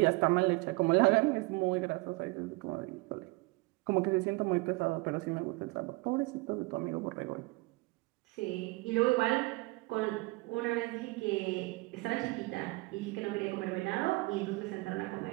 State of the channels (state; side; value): quieter; left; 24.2 dB